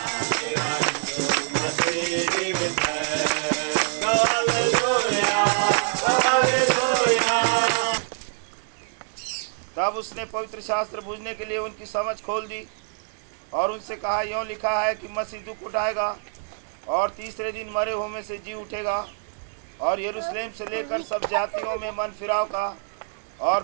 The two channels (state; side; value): silent; left; 61 dB below the other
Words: तब उसने पवित्र शास्त्र बूझने के लिए उनकी समझ खोल दी और उनसे कहा, यों लिखा है कि मसीह दुख उठाएगा और तीसरे दिन मरे हुए में से जी उठेगा और यरूशलेम से लेकर सब जातियों में मन फिराव का